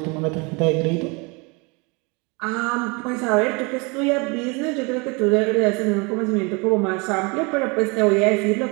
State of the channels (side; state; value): left; quieter; 29.3 dB